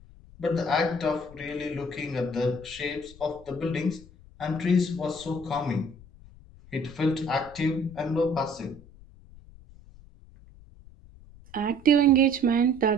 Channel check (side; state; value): left; noise; rumble, 21 dB below the sound